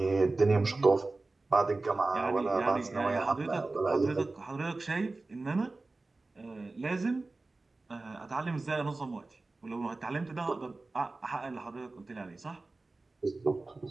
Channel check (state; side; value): quieter; left; 3.3 dB